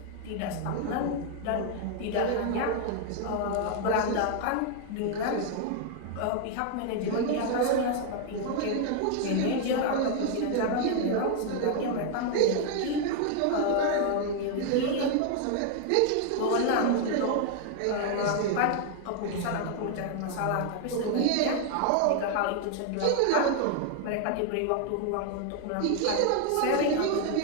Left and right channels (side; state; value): both; different; correlation 0.00